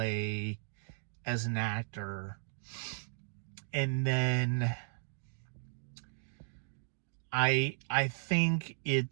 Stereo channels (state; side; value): silent; left; digital silence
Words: as an actor. And then I think